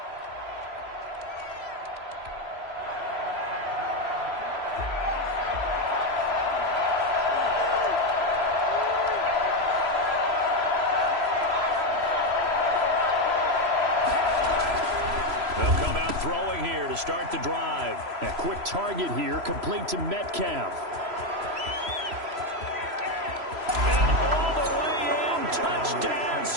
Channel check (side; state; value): left; late; 3.0 ms